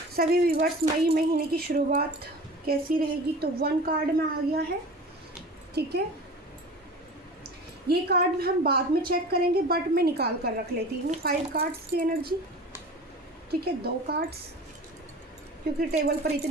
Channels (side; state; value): both; normal; correlation 0.38